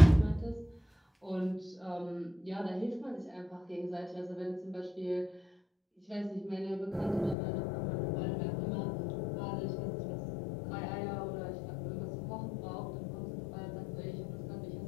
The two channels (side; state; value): right; drops out; at 7.4 s